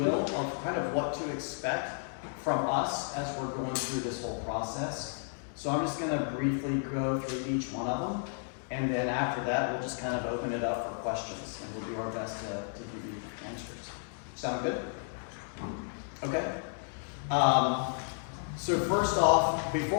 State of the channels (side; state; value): right; silent; digital silence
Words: of kind of what to expect from us as we're going through this whole process. So I'm just going to briefly go through each one of them. And then after that, we'll just kind of open it up for questions, and we'll do our best to give you answers. Sound good? Okay. So first off,